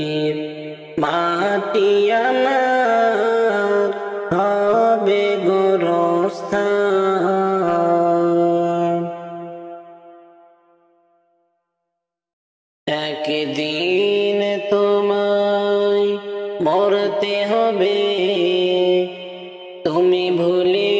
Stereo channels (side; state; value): both; identical; correlation 1.00